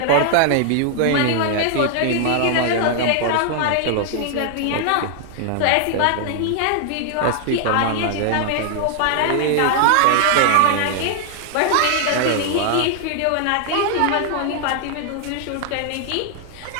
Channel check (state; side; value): different; both; correlation 0.00